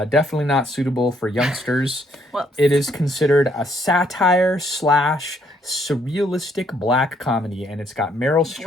not suitable for youngsters. Whoops. It is considered a satire / surrealistic black comedy, and it's got Meryl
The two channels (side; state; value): both; normal; correlation 0.69